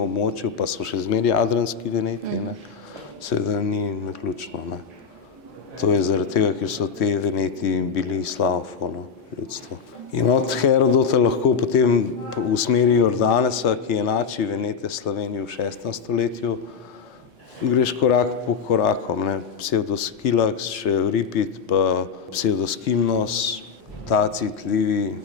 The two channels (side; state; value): right; quieter; 6.1 dB